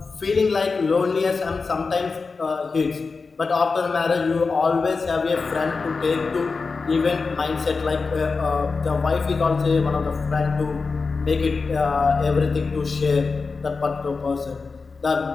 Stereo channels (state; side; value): quieter; right; 4.4 dB